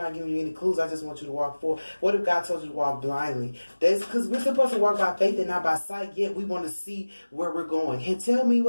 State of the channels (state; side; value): inverted; both; correlation -1.00